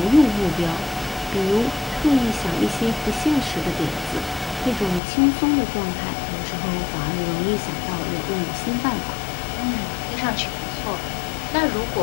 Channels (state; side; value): drops out; right; at 5.0 s